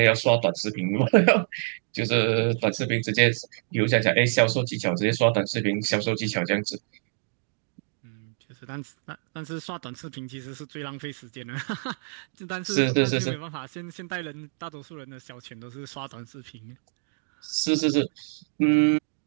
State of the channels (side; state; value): left; silent; digital silence